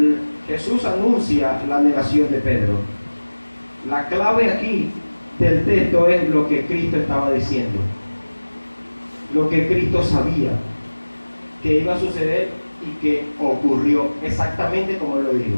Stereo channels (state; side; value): inverted; both; correlation -1.00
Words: Jesús anuncia la negación de Pedro. La clave aquí del texto es lo que Cristo estaba diciendo, lo que Cristo sabía que iba a suceder y que ocurrió exactamente como él lo dijo.